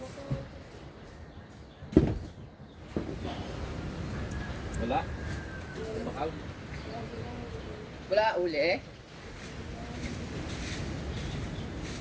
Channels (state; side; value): identical; both; correlation 1.00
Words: Wala. Bakal. Wala uli eh.